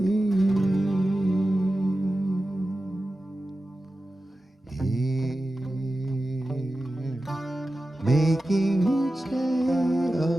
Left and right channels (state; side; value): normal; both; correlation 0.94